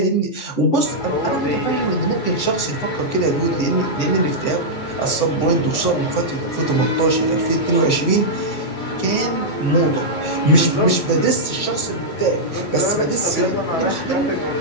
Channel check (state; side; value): late; right; 14 ms